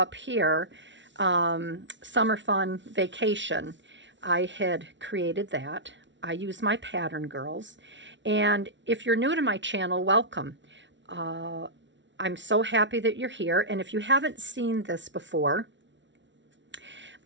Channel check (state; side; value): late; left; 0.54 ms